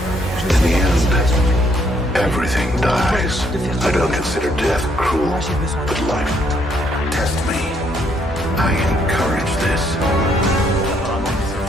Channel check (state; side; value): normal; both; correlation 0.70